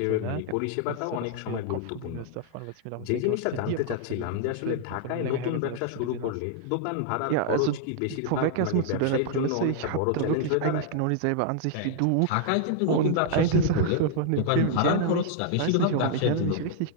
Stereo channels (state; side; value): different; both; correlation 0.00